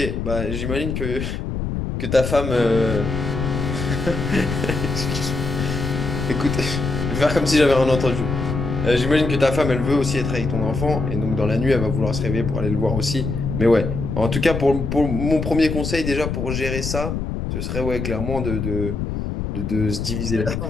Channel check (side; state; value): left; noise; rumble, 3 dB below the sound